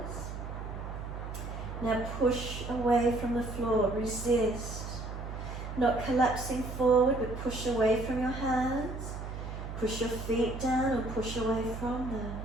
Now push away from the floor, resist. Not collapsing forward, but push away from your hands. Push your feet down and push away from them.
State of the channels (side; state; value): right; noise; hum, 7 dB below the sound